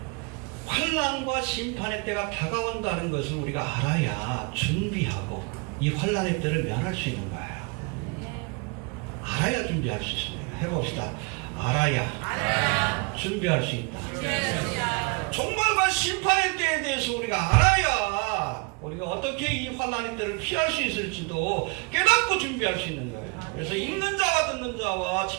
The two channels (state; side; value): quieter; left; 30.6 dB